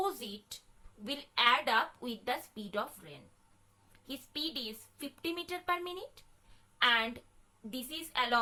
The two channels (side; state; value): both; identical; correlation 1.00